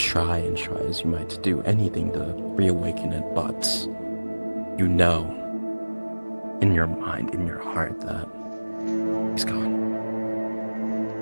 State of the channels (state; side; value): inverted; both; correlation -1.00